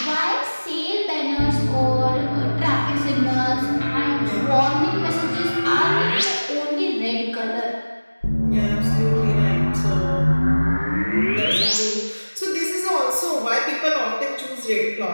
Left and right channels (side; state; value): both; inverted; correlation -1.00